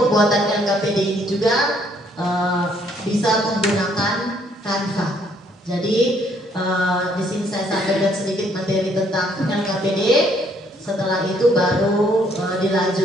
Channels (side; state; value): both; normal; correlation 0.66